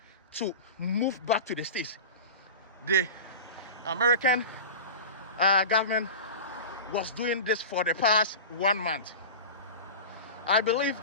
to move back to the States. The American government was doing this for the past 1 month. I believe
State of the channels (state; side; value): inverted; both; correlation -0.30